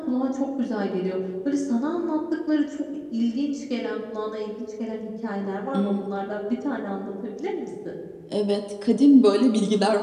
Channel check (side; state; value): both; identical; correlation 1.00